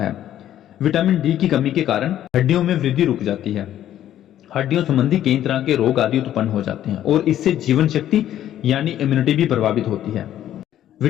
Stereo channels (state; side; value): quieter; right; 11.8 dB